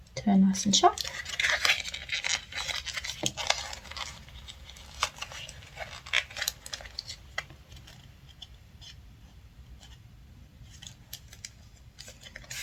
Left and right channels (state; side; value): identical; both; correlation 1.00